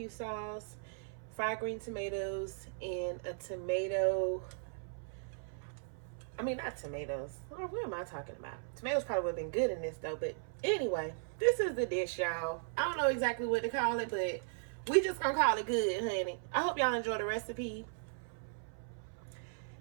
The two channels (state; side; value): silent; left; 53 dB below the other